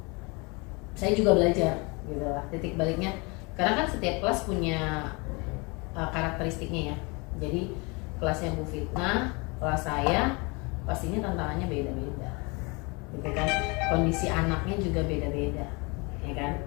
saya juga belajar gitu lah. Titik baliknya karena kan setiap kelas punya karakteristiknya ya. Jadi kelasnya Bu Fitnah, kelas saya pastinya tantangannya beda-beda. Gitu kan. Kondisi anaknya juga beda-beda, ya kan?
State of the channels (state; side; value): quieter; right; 28.7 dB